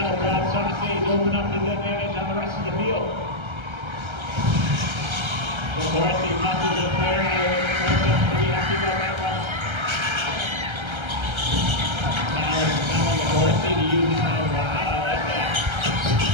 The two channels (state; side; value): late; left; 1.3 ms